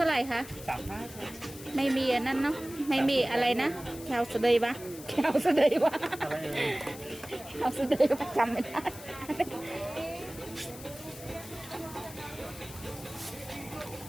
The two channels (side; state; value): left; noise; hiss, 15 dB below the sound